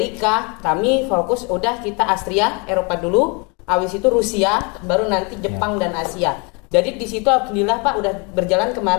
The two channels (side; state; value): right; quieter; 31.6 dB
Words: Kami fokus udah kita Austria, Eropa dulu. Habis itu Rusia, baru nanti Jepang dan Asia. Jadi di situ alhamdulillah Pak udah berjalan